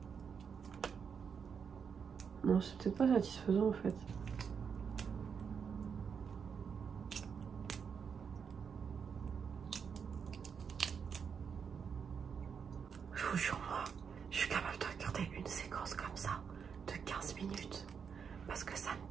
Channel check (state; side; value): quieter; left; 6.6 dB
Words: Non, c'est peut-être pas satisfaisant en fait. Je vous jure, moi, je suis capable de regarder une séquence comme ça de 15 minutes parce que ça